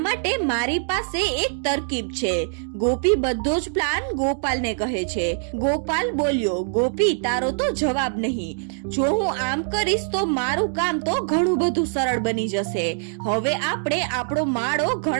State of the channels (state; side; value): silent; left; digital silence